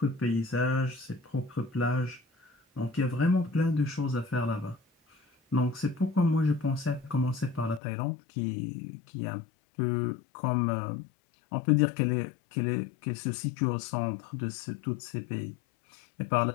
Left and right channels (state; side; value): drops out; right; at 7.8 s